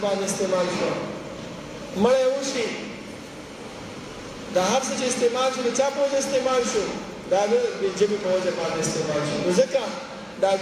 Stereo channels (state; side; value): identical; both; correlation 1.00